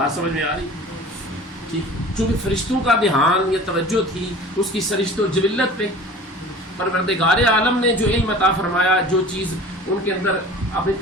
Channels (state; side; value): normal; both; correlation 0.42